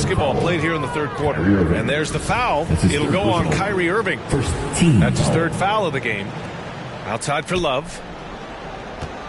played here in the third quarter. And there's the foul. It'll go on Kyrie Irving. That's his 3rd foul of the game. Outside for Love.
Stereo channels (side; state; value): both; identical; correlation 1.00